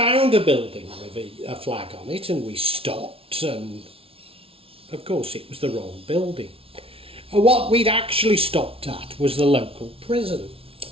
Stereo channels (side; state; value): left; late; 0.26 ms